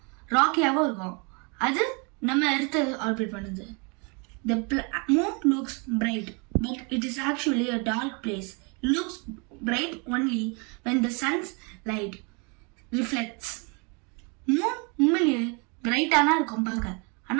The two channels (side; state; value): left; quieter; 33.0 dB